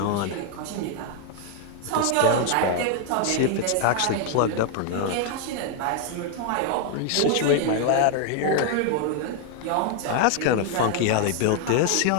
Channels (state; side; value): different; both; correlation 0.00